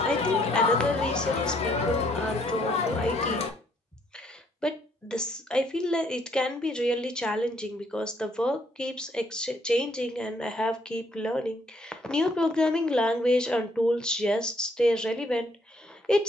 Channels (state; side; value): normal; both; correlation 0.68